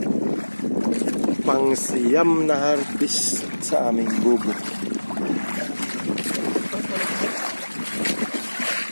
Pangsiyam na harvest sa aming bubok.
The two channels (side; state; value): both; inverted; correlation -1.00